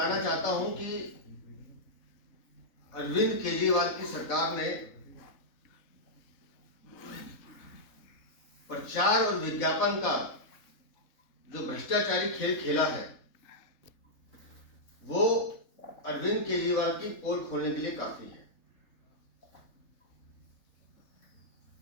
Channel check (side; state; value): right; late; 3.8 ms